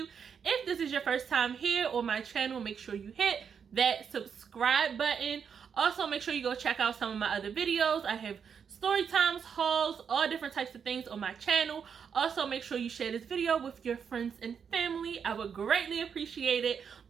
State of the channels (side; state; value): left; quieter; 7.0 dB